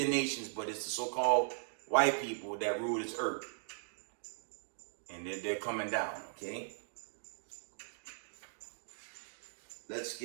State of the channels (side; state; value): left; silent; digital silence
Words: nations, but it's the so-called white people that rule this earth. And they're coming down, okay? Let's